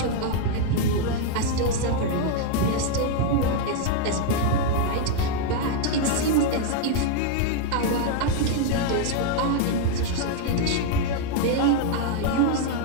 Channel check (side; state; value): both; different; correlation 0.00